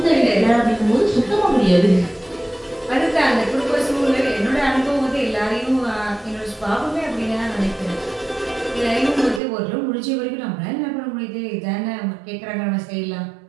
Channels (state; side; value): drops out; left; at 9.4 s